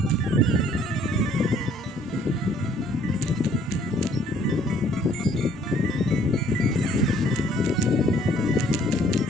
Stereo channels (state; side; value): normal; both; correlation 0.60